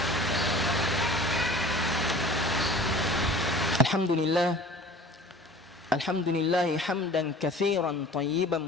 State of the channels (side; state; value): both; normal; correlation 0.44